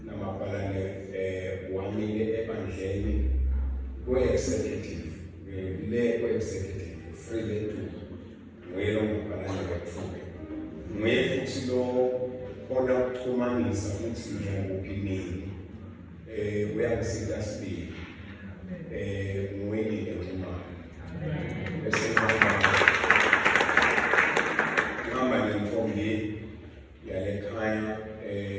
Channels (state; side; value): identical; both; correlation 1.00